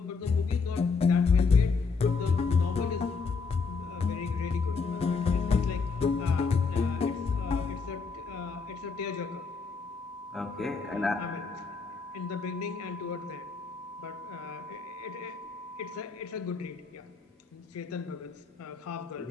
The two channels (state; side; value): quieter; right; 4.8 dB